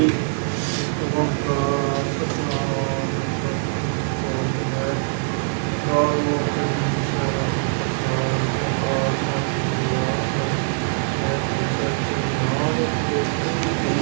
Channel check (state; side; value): silent; left; 64 dB below the other